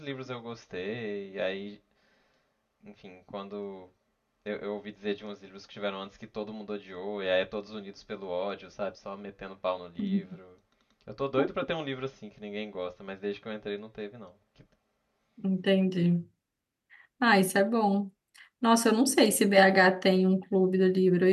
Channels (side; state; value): both; identical; correlation 1.00